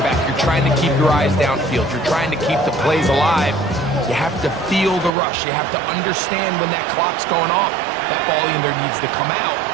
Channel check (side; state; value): left; drops out; at 5.1 s